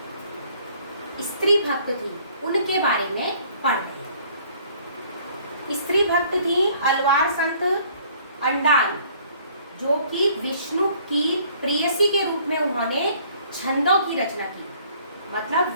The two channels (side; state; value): both; inverted; correlation -0.58